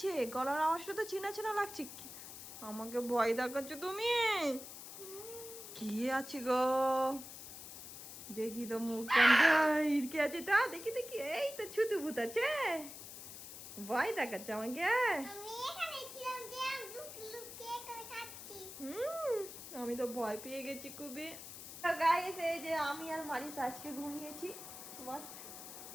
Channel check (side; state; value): left; noise; hiss, 12 dB below the sound